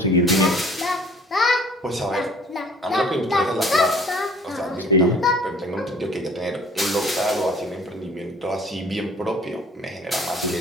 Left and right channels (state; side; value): normal; both; correlation 0.53